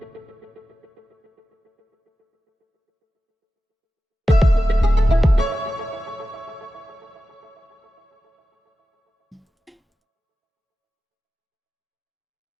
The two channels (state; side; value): normal; both; correlation 0.93